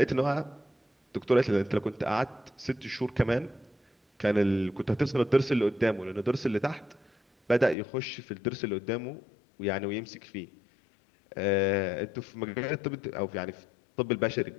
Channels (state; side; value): drops out; right; at 7.8 s